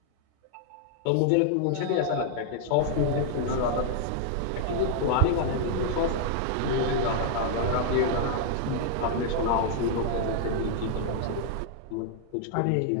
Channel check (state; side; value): different; both; correlation -0.01